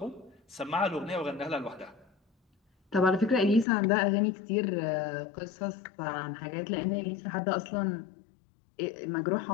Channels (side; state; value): right; drops out; at 3.7 s